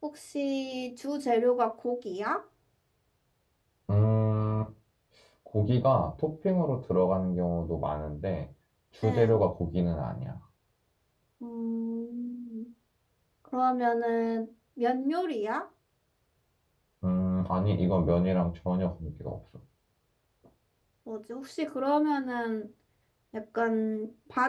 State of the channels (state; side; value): identical; both; correlation 1.00